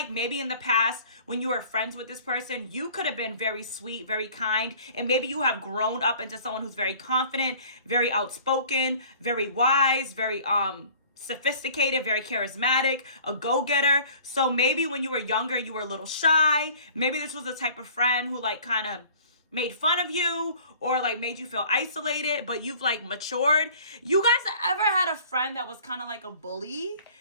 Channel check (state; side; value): inverted; both; correlation -0.49